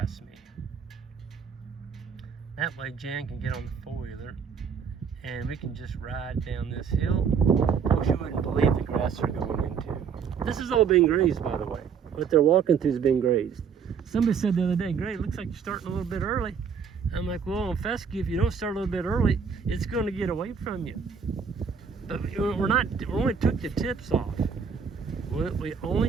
me. That way Jan can get on the four-wheeler and we can just ride down this hill. Oh, you wouldn't believe the grass they're going into. This is all being grazed, by the way. What they're walking through is being grazed. Somebody said the other day, Greg, it looks like you're starting a little bit early. I'm like, well, on fescue, if you don't start a little bit early, it's going to get away from you. But we only took the tips off. We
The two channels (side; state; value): left; quieter; 6.5 dB